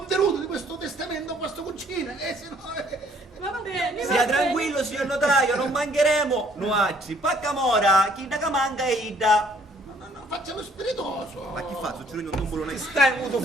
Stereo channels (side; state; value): both; normal; correlation 0.62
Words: di questo testamento a vostra cugina, se no... Va bene. Sia tranquillo, signor notaio, non mancheremo. Nuacci, paccamora, chi da che manca è Ida. No, facciamo spiritoso. Ma chi fa? Succede un tumbolo nel Stai avuto